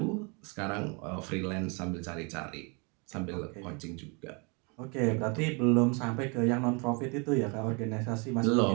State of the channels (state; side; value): quieter; left; 32.4 dB